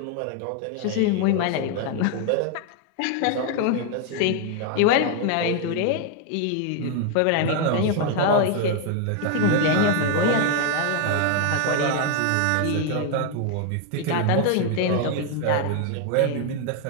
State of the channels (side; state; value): both; different; correlation 0.00